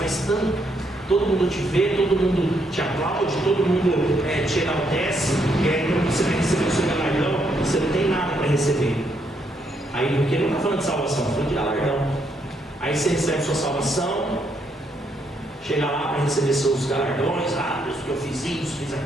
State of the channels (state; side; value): normal; both; correlation 0.75